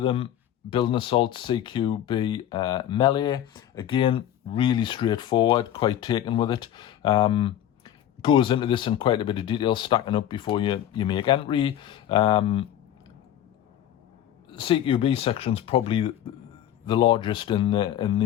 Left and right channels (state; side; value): quieter; right; 11.2 dB